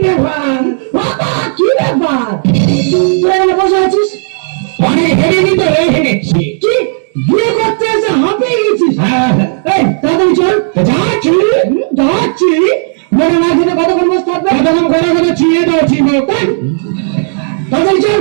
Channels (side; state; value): left; silent; 74 dB below the other